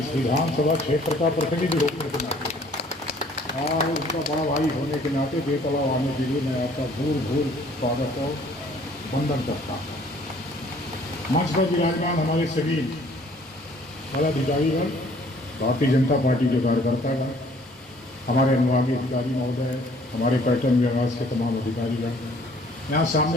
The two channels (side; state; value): both; normal; correlation 0.57